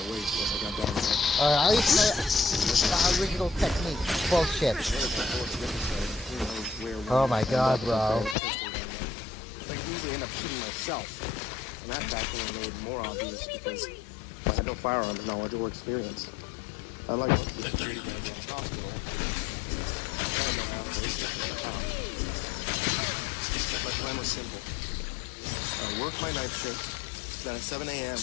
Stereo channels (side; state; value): right; drops out; at 8.3 s